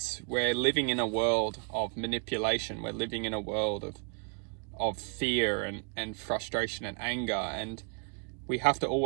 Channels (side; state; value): left; quieter; 38.4 dB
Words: We're living in a world of manipulation. We're living in a world of fear and frustration and anger, and we have to